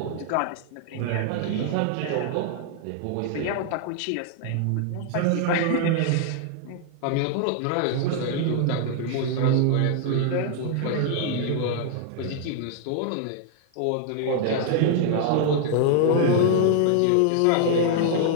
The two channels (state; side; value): different; both; correlation 0.00